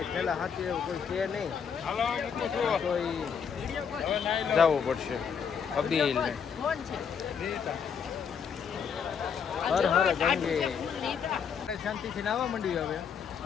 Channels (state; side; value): quieter; right; 7.0 dB